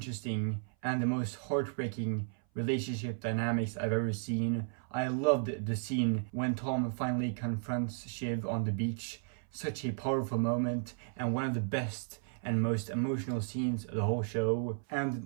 and the most heartbreaking relationship dynamics I've ever seen. I loved the scene when Tom finally confronts Shiv on the beach. Such a powerful moment, and one of the best and most emotional scenes of the whole show.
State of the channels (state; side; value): silent; left; 55 dB below the other